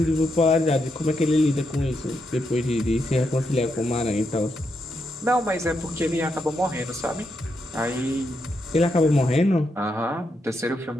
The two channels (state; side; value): normal; both; correlation 0.82